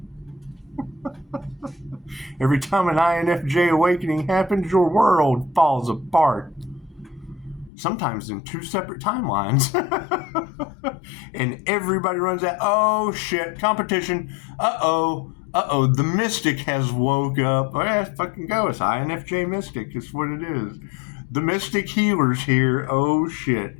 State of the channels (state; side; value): drops out; right; at 7.7 s